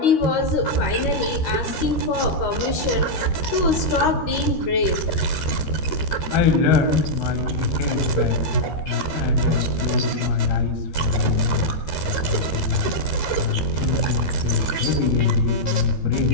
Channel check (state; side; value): late; right; 13 ms